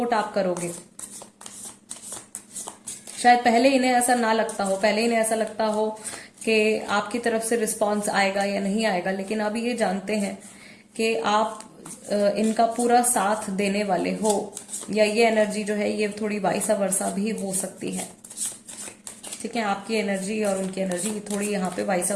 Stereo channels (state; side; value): identical; both; correlation 1.00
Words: आप करोगे। शायद पहले इन्हें ऐसा ना लगता हो, पहले इन्हें ऐसा लगता हो कि आपकी तरफ से रिस्पांस आएगा या नहीं आएगा, लेकिन अब ये जानते हैं कि आप इनका पूरा साथ देने वाले हो, या ये एनर्जी जो है ये थोड़ी वाइसा वर्सा भी हो सकती है, ठीक है। आपकी एनर्जी और उनकी एनर्जी थोड़ी यहाँ पे वाइसा